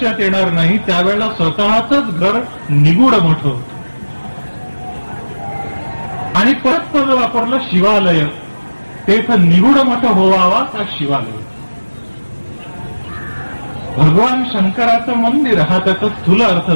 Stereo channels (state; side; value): inverted; both; correlation -1.00